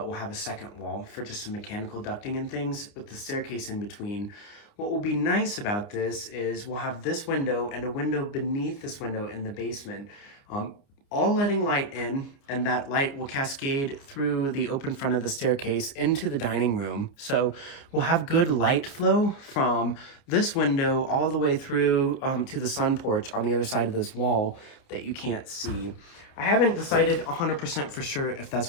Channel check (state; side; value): late; right; 29 ms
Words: we'll have a second wall for just some mechanical ducting and things with the staircase in between. What will be nice about this is we'll have this window and a window beneath this window in the basement, all letting light in, and that light will cascade through the open front of the staircase into the dining room. So we'll have good light flow from this window all the way through to the sun porch on the other side of this wall that you can't see. I haven't decided 100% for sure if